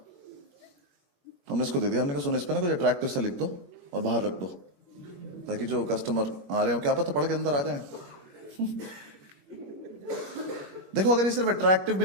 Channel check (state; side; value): late; left; 21 ms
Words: हमने इसको दे दिया। हमने कहा सुनो, इस पे ना कुछ अट्रैक्टिव सा लिख दो और बाहर रख दो, ताकि जो कस्टमर आ रहे हो क्या पता पढ़ के अंदर आ जाए। देखो अगर ये सिर्फ अट्रैक्टिव भी